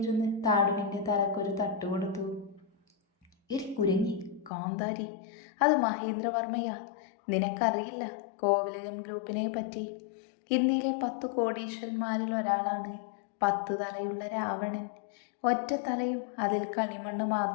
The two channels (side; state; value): right; drops out; at 4.5 s